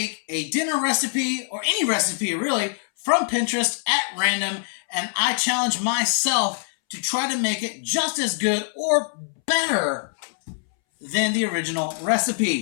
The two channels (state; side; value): silent; right; 63 dB below the other